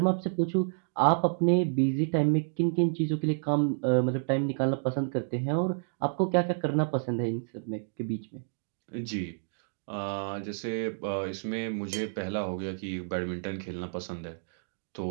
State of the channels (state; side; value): silent; left; digital silence